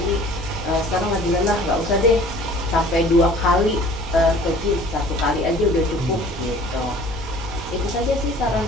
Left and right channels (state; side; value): normal; both; correlation 0.49